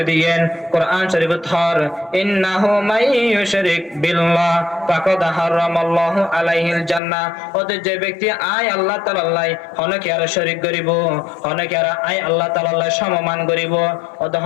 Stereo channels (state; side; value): drops out; right; at 7.0 s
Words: দিয়েন। কোরআন শরীফ থর ইন্নাহু মাইয়ুশরিক বিল্লাহ ফাকাদ হারামাল্লাহু আলাইহিল জান্নাহ, ওতে যে ব্যক্তি আয় আল্লাহ তাআলা হনকে আর শরীক করিব, হনকে আর আয় আল্লাহ তাআলা সমমান করিব, ওতে